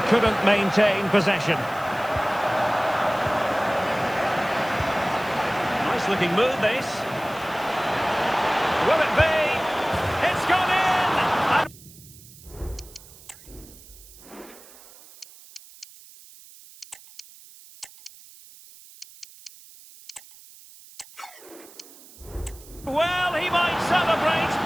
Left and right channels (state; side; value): noise; right; hiss, 21 dB below the sound